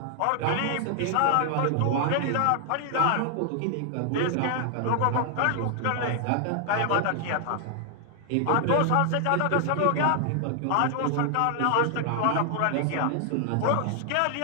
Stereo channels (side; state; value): both; different; correlation 0.00